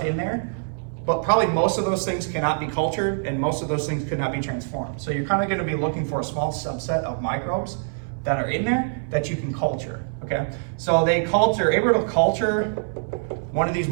in there, but probably most of those things cannot be cultured and most of those things could not be transformed. So you're kind of gonna be looking for a small subset of microbes that are in there that you can culture, okay? So they're able to culture one of these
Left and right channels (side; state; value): left; silent; 62 dB below the other